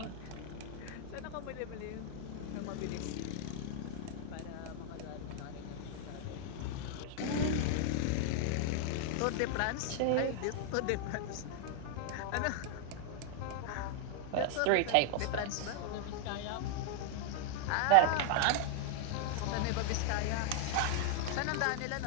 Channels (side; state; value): both; different; correlation 0.00